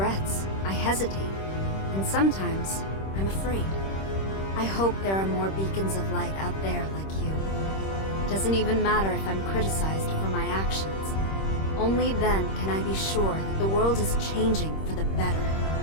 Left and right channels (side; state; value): right; late; 26 ms